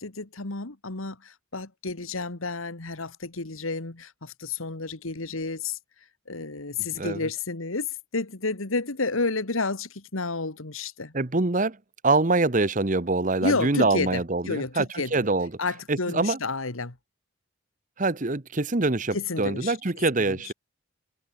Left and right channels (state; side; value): normal; both; correlation 0.02